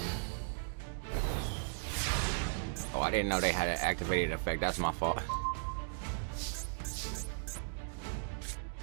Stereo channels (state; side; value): silent; left; digital silence